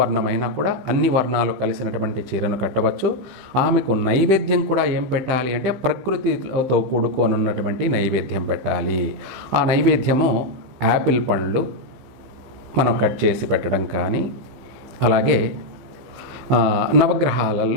కూడా అన్ని వర్ణాలు కలిసినటువంటి చీరను కట్టవచ్చు. ఆమెకు నైవేద్యం కూడా ఏం పెట్టాలి అంటే ప్రకృతితో కూడుకొని ఉన్నటువంటి నైవేద్యం పెట్టాలి. ఆ నైవేద్యము యాపిల్ పండ్లు మనం కట్ చేసి పెట్టడం కానీ, అలాగే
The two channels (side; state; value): left; late; 15 ms